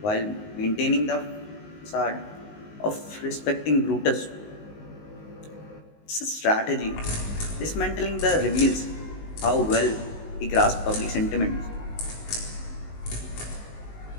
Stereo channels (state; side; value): late; right; 19 ms